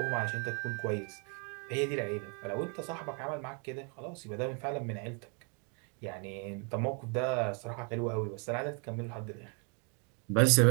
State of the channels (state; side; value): quieter; left; 37.4 dB